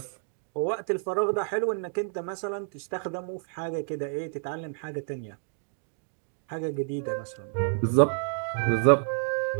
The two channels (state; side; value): silent; left; digital silence